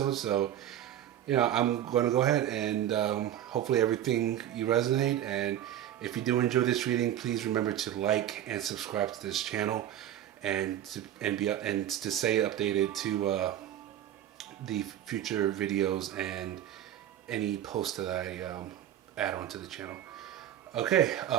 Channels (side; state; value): left; quieter; 11.5 dB